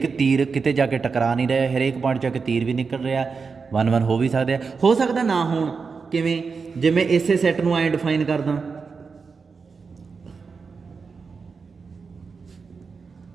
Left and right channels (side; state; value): left; quieter; 5.1 dB